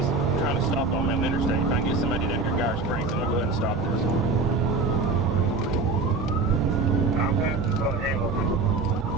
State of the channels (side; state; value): left; quieter; 3.7 dB